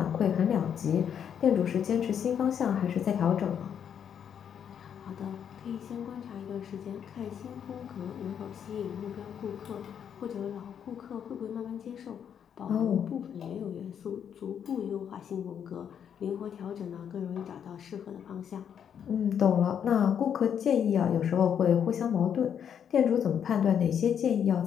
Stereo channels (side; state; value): right; quieter; 8.4 dB